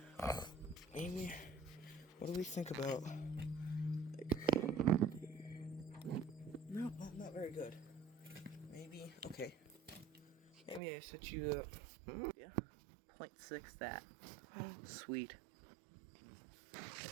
Amy, what do we think about? Like, no, not very good. Maybe okay. Maybe I set you up. Yeah, 0.6 that. Sweet.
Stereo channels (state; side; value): drops out; left; at 10.8 s